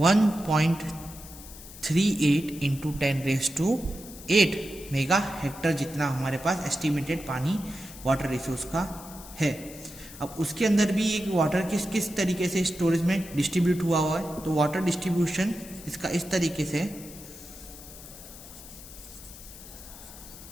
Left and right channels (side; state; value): left; noise; hiss, 16 dB below the sound